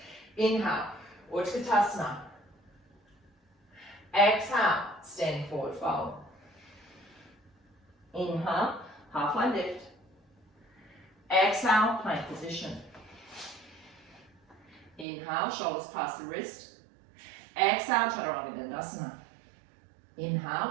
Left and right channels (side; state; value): left; drops out; at 15.1 s